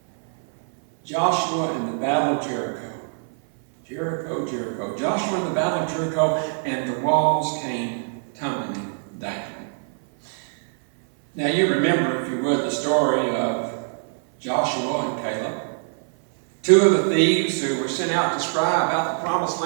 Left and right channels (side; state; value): left; silent; 59 dB below the other